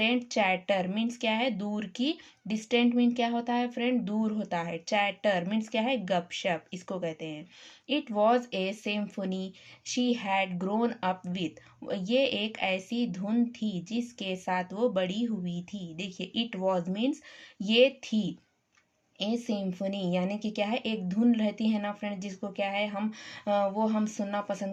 chatter means क्या है, दूर की। डिस्टेंट मीन्स क्या होता है फ्रेंड, दूर होता है। चैटर मीन्स क्या है, गपशप, इसको कहते हैं। It was a symphony she had grown up with, ये एक ऐसी धुन थी जिसके साथ वो बड़ी हुई थी। देखिए इट वॉज मीन्स ये थी, ए सिम्फनी यानी कि क्या है, एक धुन रहती है ना फ्रेंड, जिसको क्या है हम वो हम सुनना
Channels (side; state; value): both; identical; correlation 1.00